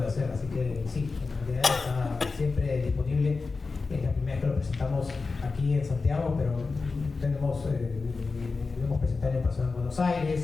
hacer, así que sí, el material está siempre disponible. Es la primera vez que lo presentamos aquí en Santiago, pero lo hemos presentado en persona en Buenos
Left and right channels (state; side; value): quieter; right; 4.2 dB